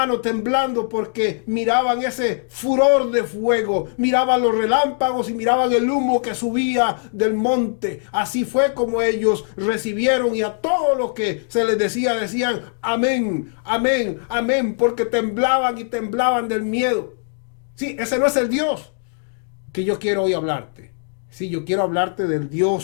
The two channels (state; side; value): silent; right; digital silence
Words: temblando porque miraban ese furor de fuego, miraban los relámpagos y miraban el humo que subía del monte. Así fue como ellos recibieron, y a todo lo que se les decía, decían amén, amén, amén, porque temblaban y temblaban del miedo. Sí, ese no es el Dios que yo quiero hoy hablarte. Sí, yo quiero hablarte del